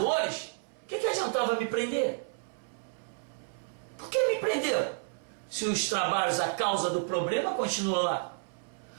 o que adiantava me prender? Por que me prendeu? Se os trabalhos, a causa do problema, continuou lá.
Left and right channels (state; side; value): silent; left; 57 dB below the other